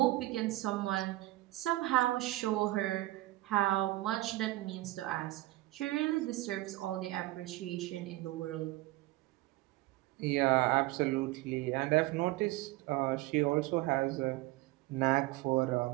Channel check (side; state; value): left; quieter; 18.6 dB